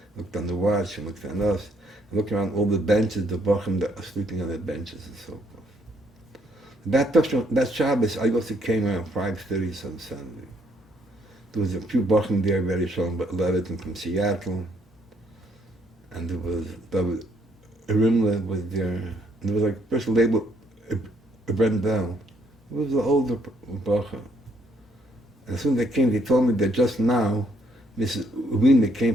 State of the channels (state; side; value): normal; both; correlation 0.69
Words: looked on the watch and looked at us, and looked around all the benches, the Bochum that are sleeping on the benches and so forth. That Shabbos, I also came around 5:30 on Sunday. There was a few Bochum there, very strong, but Levitin from Seattle. And there was Rimla was there, and there was like a person labeled Brendel. It was an older Bacha. And as soon as they came, they told me that just now, Mrs. Wiener came